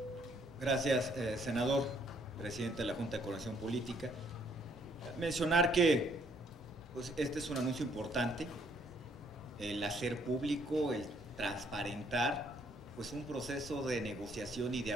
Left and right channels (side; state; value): both; normal; correlation 0.66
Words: Gracias, senador, presidente de la Junta de Coordinación Política. Mencionar que pues, este es un anuncio importante, el hacer público, el transparentar pues, un proceso de negociación y de